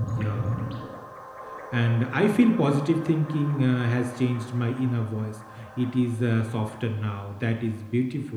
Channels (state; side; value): identical; both; correlation 1.00